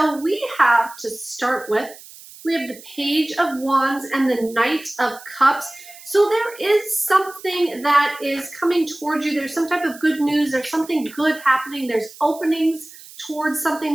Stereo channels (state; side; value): noise; right; hiss, 19 dB below the sound